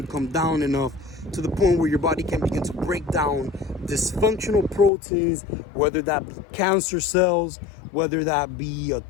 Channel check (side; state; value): right; drops out; at 4.9 s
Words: come down enough to the point where your body can begin to break down dysfunctional proteins, whether that be cancer cells, whether that be a